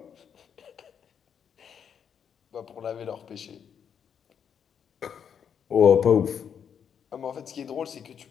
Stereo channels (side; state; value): right; quieter; 7.8 dB